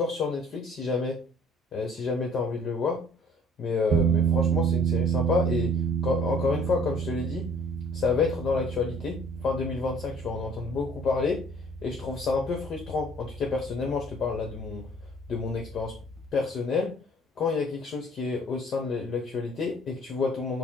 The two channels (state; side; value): normal; both; correlation 0.55